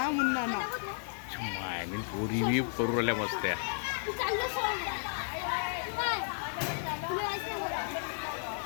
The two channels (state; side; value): silent; right; 56 dB below the other